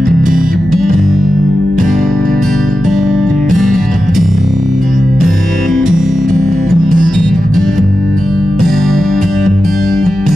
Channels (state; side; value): noise; right; hum, 14 dB below the sound